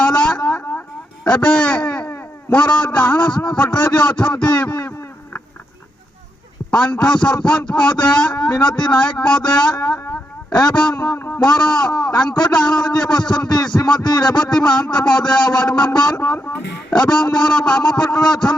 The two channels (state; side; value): normal; both; correlation 0.82